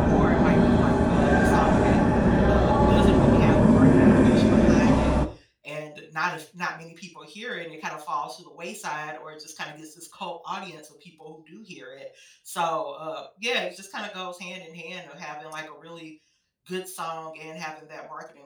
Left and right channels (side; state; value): both; identical; correlation 1.00